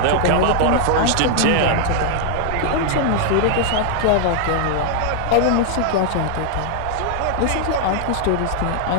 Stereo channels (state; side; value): different; both; correlation 0.00